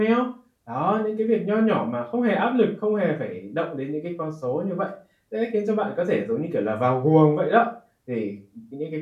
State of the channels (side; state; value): both; identical; correlation 1.00